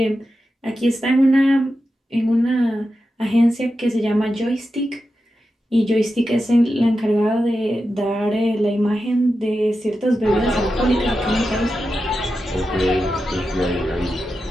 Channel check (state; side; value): normal; both; correlation 0.90